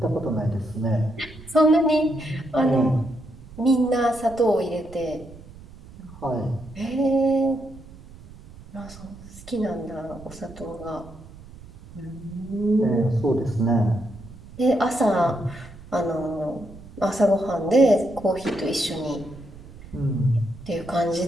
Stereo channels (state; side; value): noise; right; rumble, 18 dB below the sound